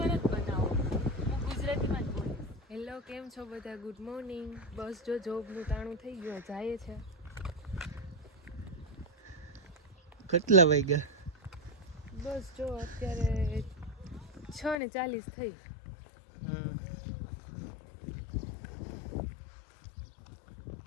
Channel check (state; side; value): drops out; right; at 14.8 s